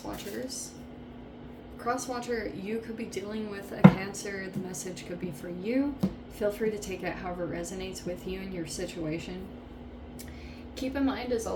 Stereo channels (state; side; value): identical; both; correlation 1.00